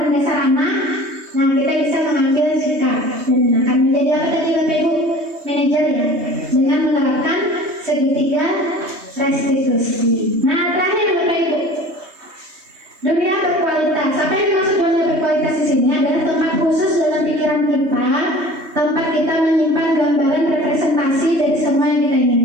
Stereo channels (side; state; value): left; late; 3.2 ms